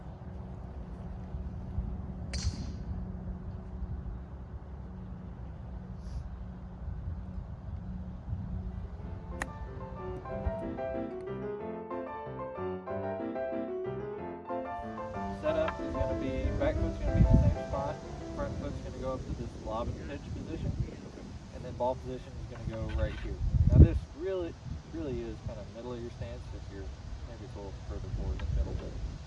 Setup is going to be, back foot's going to be in the same spot, front foot's going to go up to this lob and pitch position, and then ball position is going to go right here. Now this really is kind of middle of your stance. If you're maybe it's a little further forward than middle,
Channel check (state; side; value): identical; both; correlation 1.00